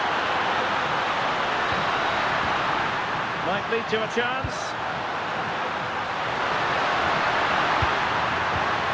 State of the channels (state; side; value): identical; both; correlation 1.00